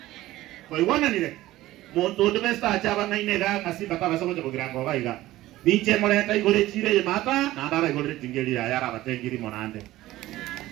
koiwana nire mundu ndo besta achaba ngaine ga kasimba tabasa gote bugirango ga iga ninche moleta igore chire ye mata na ndara igore tingeli ya yara batengiri monande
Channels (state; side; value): quieter; left; 16.2 dB